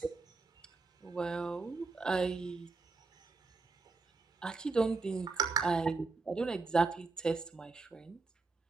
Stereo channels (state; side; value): quieter; left; 4.0 dB